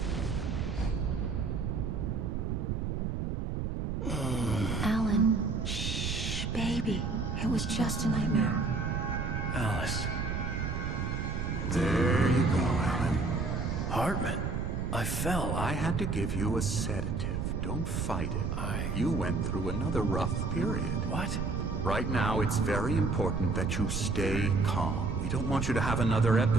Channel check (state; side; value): noise; right; rumble, 2 dB below the sound